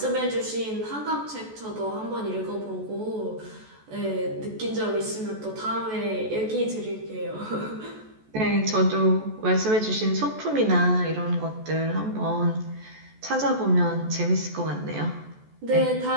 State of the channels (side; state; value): left; late; 14 ms